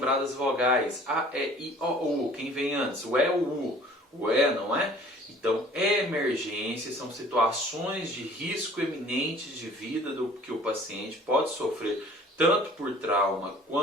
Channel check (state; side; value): normal; both; correlation 0.50